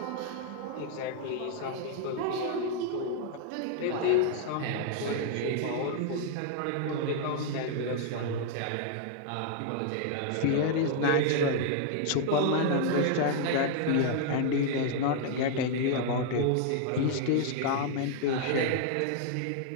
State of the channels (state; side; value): different; both; correlation 0.00